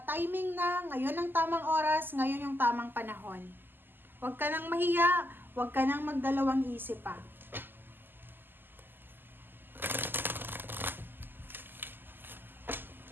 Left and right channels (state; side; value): late; left; 0.093 ms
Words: na, ngayon ang tamang oras, ngayon yung tamang panahon. Huwag ka nang mahiya, huwag ka nang magdalawang isip pa.